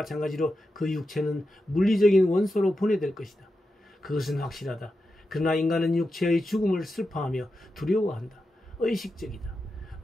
그 육체는 물리적인 원소로 분해될 것이다. 그것은 확실하다. 그러나 인간은 육체의 죽음을 슬퍼하며 두려워한다. 의식적이다.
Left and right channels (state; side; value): normal; both; correlation 0.89